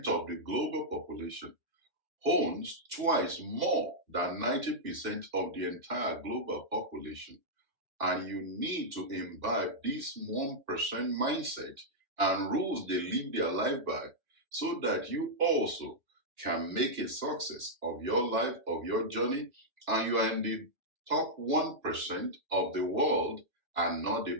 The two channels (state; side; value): late; left; 2.6 ms